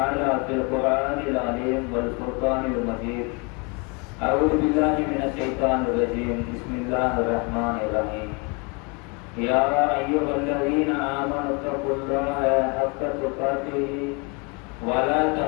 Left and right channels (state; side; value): quieter; right; 31.2 dB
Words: في القرآن العظيم والفرقان المجيد أعوذ بالله من الشيطان الرجيم بسم الله الرحمن الرحيم يا أيها الذين آمنوا اتقوا الله حق تقاته ولا